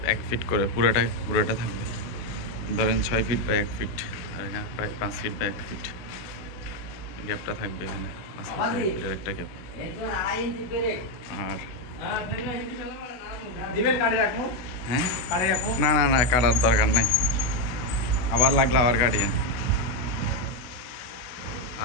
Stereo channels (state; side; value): late; right; 16 ms